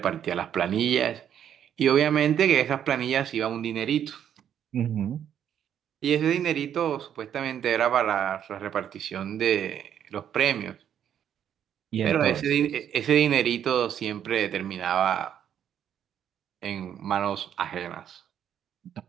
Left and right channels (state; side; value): quieter; left; 9.5 dB